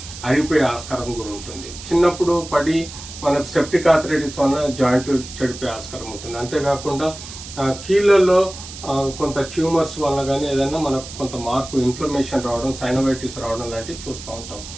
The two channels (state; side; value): noise; right; hiss, 13 dB below the sound